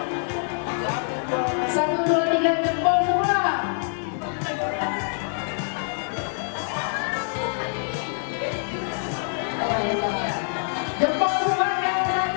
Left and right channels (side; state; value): right; silent; digital silence